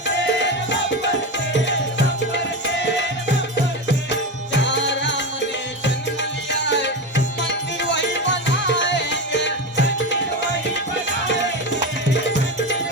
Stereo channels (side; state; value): both; normal; correlation 0.19